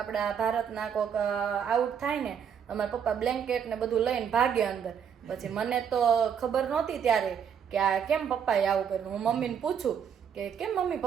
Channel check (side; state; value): left; quieter; 7.8 dB